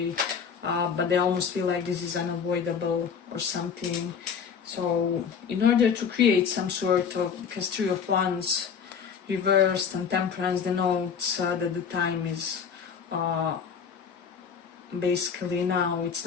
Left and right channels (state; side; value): quieter; right; 6.7 dB